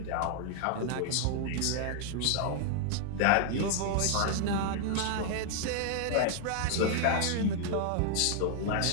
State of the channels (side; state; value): both; different; correlation 0.00